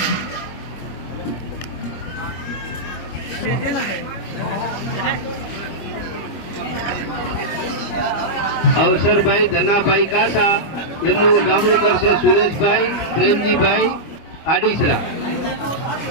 અવસરભાઈ ધનાભાઈ કાસા એમનું ઉડામણું કરશે સુરેશભાઈ પ્રેમજીભાઈ આડીસરા.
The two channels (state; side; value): late; right; 25 ms